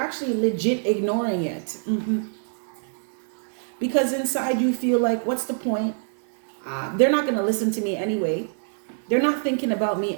legit ignoring it. Because inside you feel like, what's the point? They're not going to listen to me anyway. They're not thinking about me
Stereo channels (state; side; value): silent; left; 62 dB below the other